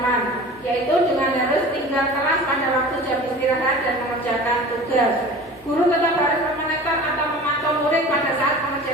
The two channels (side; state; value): left; noise; hum, 28 dB below the sound